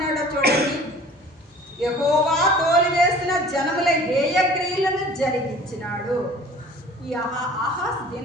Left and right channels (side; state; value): both; normal; correlation 0.47